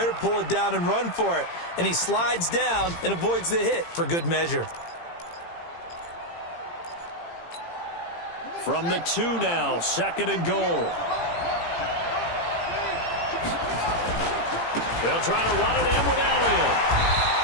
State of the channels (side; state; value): right; late; 18 ms